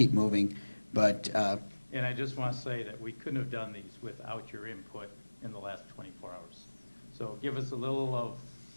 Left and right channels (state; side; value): inverted; both; correlation -1.00